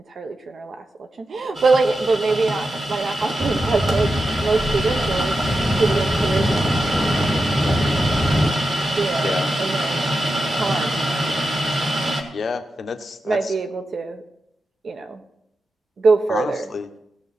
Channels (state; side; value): normal; both; correlation 0.90